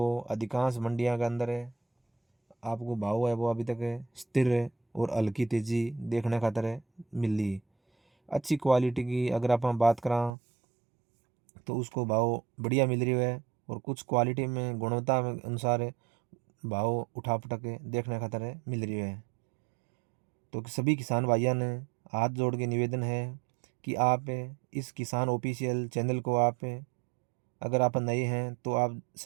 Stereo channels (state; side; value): drops out; left; at 10.3 s